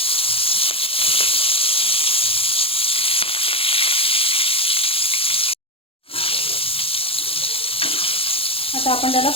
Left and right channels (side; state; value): right; late; 0.27 ms